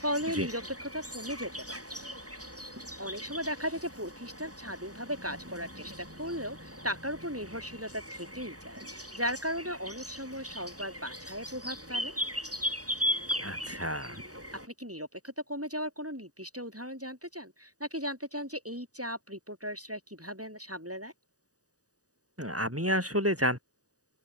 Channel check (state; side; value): late; left; 0.67 ms